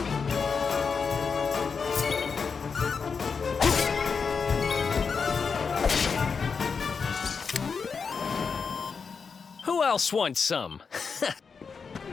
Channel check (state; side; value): quieter; right; 5.5 dB